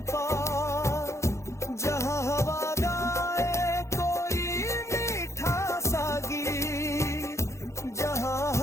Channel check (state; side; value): late; right; 0.14 ms